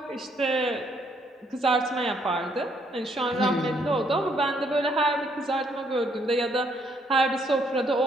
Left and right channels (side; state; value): both; normal; correlation 0.70